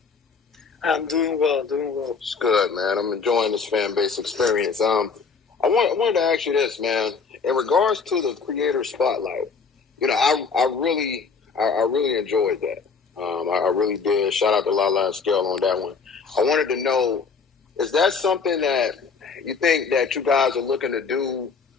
I'm doing well. It's good, man. I'm enjoying this Fanbase experience. I wanted to ask you this, man. In regards to the creator spotlight, I really enjoyed that. I really did. Shout out to Lala and Scale on that one. I wanted to know, is that something that you think that you guys are looking to do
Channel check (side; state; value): right; quieter; 5.2 dB